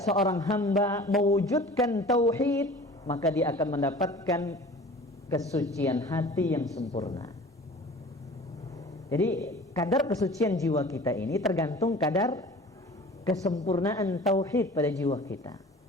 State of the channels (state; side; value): normal; both; correlation 0.43